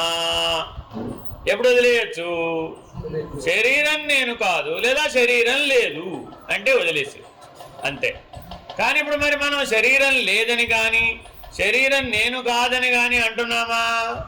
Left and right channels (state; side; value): identical; both; correlation 1.00